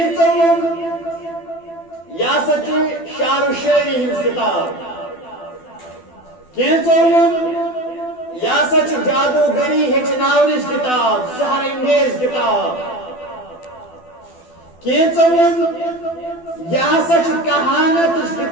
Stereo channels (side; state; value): right; late; 12 ms